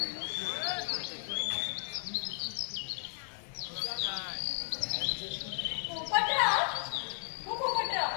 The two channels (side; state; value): right; silent; 55 dB below the other